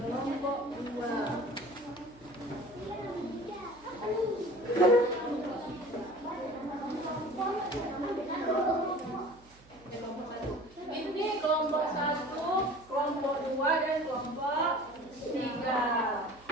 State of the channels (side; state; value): right; noise; hum, 26 dB below the sound